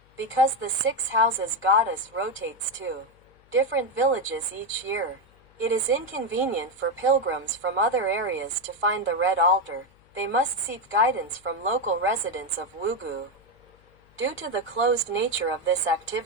Because the 6 houses goddess rotates to different villages each year, it is inconvenient for pilgrims from other areas to find the red altar. They must seek guidance from local residents of Wugu. Due to the closed nature of this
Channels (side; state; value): left; noise; hum, 30 dB below the sound